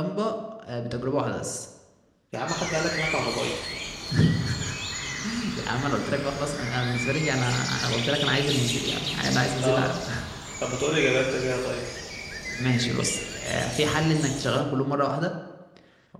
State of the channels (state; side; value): identical; both; correlation 1.00